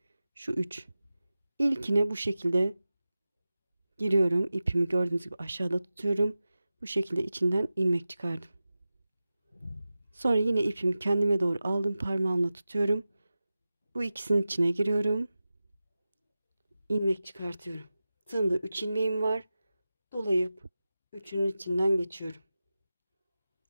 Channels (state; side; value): inverted; both; correlation -0.95